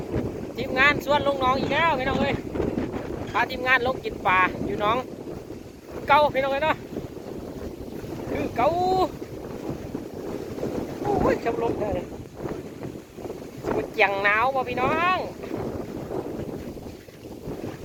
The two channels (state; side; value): identical; both; correlation 1.00